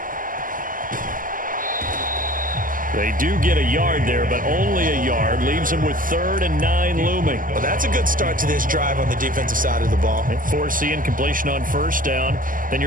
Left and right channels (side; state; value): left; late; 0.40 ms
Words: They do get a yard there, but only a yard. Leaves them with 3rd and 9 looming. Well, that's a good start to this drive on the defensive side of the ball. Force the incompletion on 1st down. Then